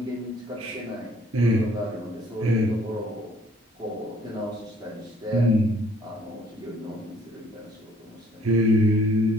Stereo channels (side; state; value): both; normal; correlation 0.60